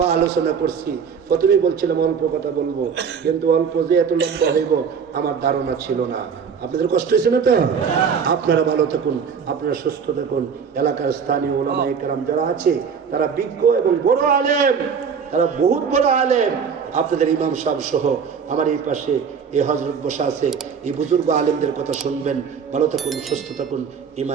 আলোচনা করছি। প্রথমেই বলছিলাম অল্প কথা বলবো, কিন্তু অল্প যে এত লম্বা হইব আমার ধারণা ছিল না। আপনাদের কষ্ট হয়েছে না তো? আপনারা ভালো থাকুন, আপনারা সুস্থ থাকুন। এলাকার স্থানীয় ওলামায়ে কেরাম যারা আছে, তারা বিজ্ঞ এবং বড় আলেম, তারা বহুত বড় আলেম। আপনাদের ইমাম সাহেব সহ আমার এই পাশে এই হযরত বসা আছে, এই বুজুর্গ আলেমদের কথা শুনবেন। ভালো থাকুন, সুস্থ থাকুন,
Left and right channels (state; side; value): quieter; left; 6.5 dB